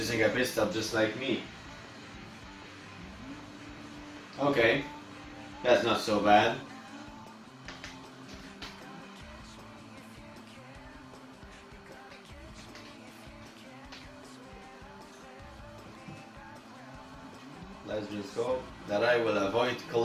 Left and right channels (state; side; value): identical; both; correlation 1.00